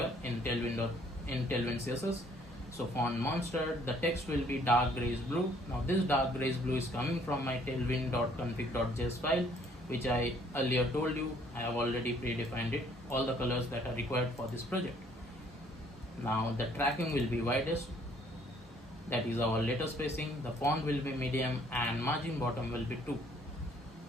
in tailwind CSS. So font monster, the text will be dark grayish blue. Now this dark grayish blue is coming from my tailwind.config.js file, which I earlier told you I have already predefined it, all the colors that are required for this project. Now the tracking will be widest, that is our letter spacing, the font will be medium, and margin bottom will be 2.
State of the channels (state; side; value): normal; both; correlation 0.62